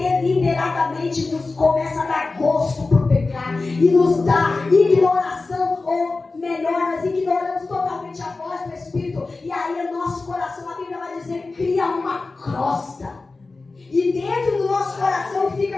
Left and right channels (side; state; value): right; quieter; 3.7 dB